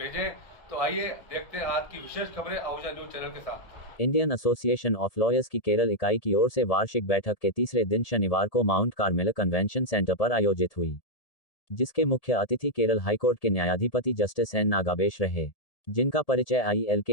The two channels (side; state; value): right; late; 1.7 ms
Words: तो आइए देखते हैं आज की विशेष खबरें आहूजा न्यूज़ चैनल के साथ। इंडियन एसोसिएशन ऑफ लॉयर्स की केरल इकाई की ओर से वार्षिक बैठक के तीसरे दिन शनिवार को माउंट कार्मेल कन्वेंशन सेंटर पर आयोजित हुई, जिसके मुख्य अतिथि केरल हाईकोर्ट के न्यायाधिपति जस्टिस एन नागाबेश रहे, जिनका परिचय आईएल